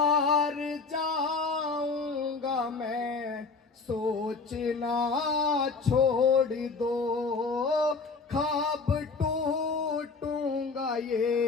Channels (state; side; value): quieter; right; 4.4 dB